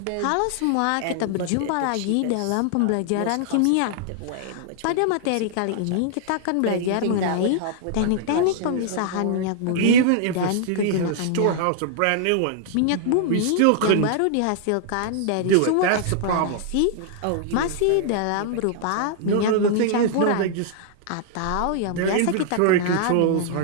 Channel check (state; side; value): different; both; correlation -0.01